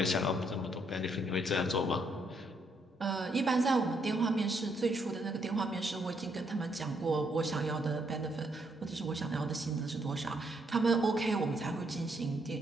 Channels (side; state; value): both; normal; correlation 0.74